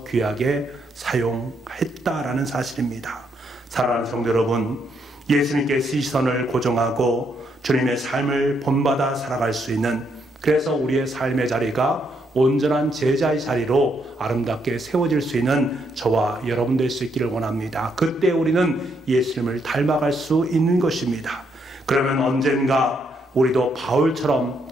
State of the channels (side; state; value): both; normal; correlation 0.75